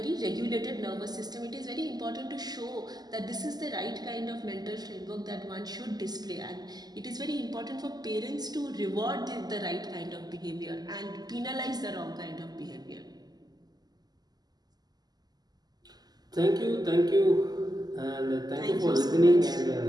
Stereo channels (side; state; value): left; late; 0.20 ms